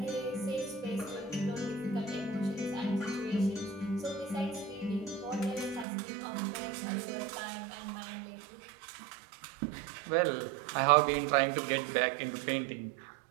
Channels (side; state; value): left; drops out; at 5.9 s